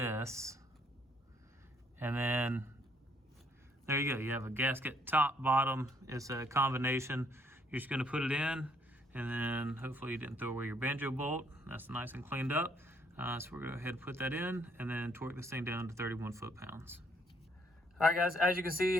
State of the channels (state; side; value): normal; both; correlation 0.67